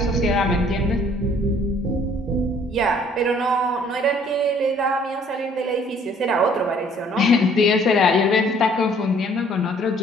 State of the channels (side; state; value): both; normal; correlation 0.58